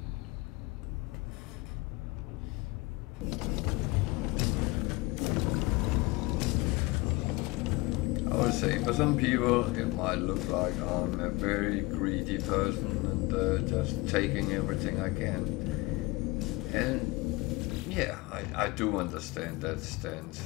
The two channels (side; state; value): right; quieter; 22.7 dB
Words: I would say for some people it might look like I'm a very greedy person and just taking everything I can. And yeah, I do understand that stance.